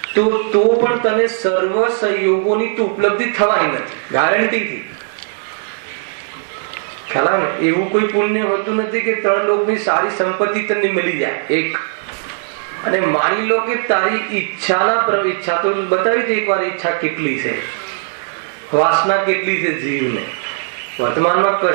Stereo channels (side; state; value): left; silent; digital silence